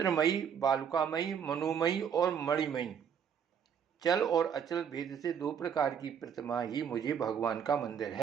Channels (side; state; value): left; quieter; 7.8 dB